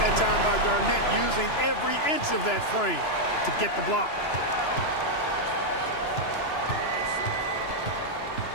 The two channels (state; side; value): late; right; 2.9 ms